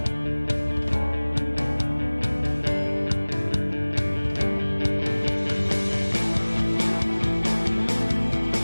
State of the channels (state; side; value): inverted; both; correlation -1.00